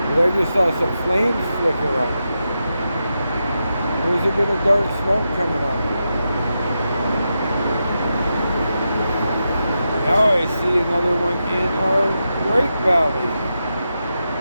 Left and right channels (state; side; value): inverted; both; correlation -0.88